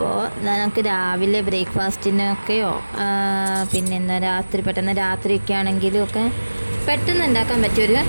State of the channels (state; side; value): inverted; both; correlation -1.00